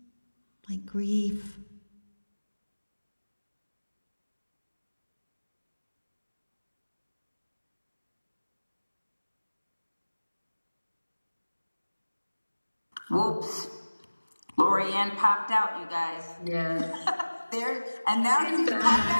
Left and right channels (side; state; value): both; inverted; correlation -1.00